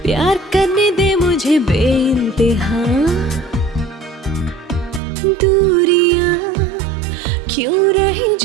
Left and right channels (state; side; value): drops out; left; at 5.0 s